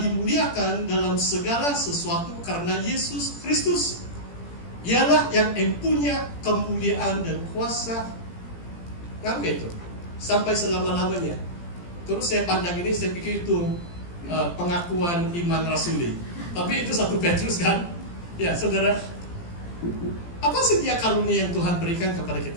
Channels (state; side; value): late; right; 17 ms